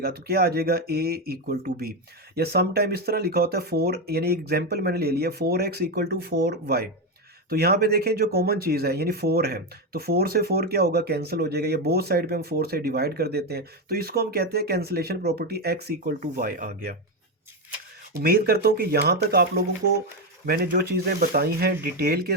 तो क्या आ जाएगा, ए इक्वल टू बी। या सम टाइम इस तरह लिखा होता है फोर, यानी एग्जाम्पल मैंने ले लिया, 4x इक्वल टू 4y। तो यहाँ पे देखें जो कॉमन चीज़ है यानी 4 है, तो 4 से 4 क्या होगा, कैंसिल हो जाएगा, या बोथ साइड पे हम 4 से डिवाइड कर देते हैं, तो इसको हम कहते हैं cancellation property, x equal to y आ गया। उम्मीद करता हूँ कि यहाँ तक आप लोगों को मैंने जो चीज़ें बताई हैं डिटेल के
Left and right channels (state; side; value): normal; both; correlation 0.10